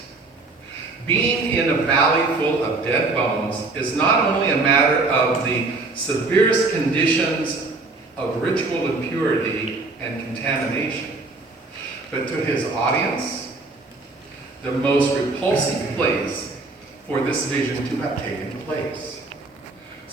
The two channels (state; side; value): quieter; left; 3.5 dB